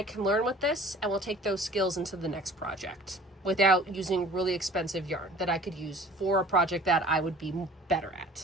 can learn with this, and we'll take those skills into the next project without using really expensive yarn that I could use for a project that I would be better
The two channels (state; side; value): normal; both; correlation 0.48